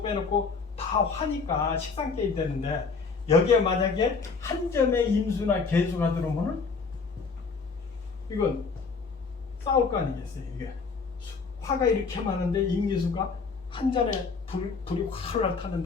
빼놓고 다 화니까 식상계이 되는데 여기에 만약에 한 점에 임수나 개수가 들어오면은 이건 싸울 거 아니겠어요. 이게 화가 이렇게 많은데 임기수가 한 잔에 불이 활활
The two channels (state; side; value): quieter; right; 4.8 dB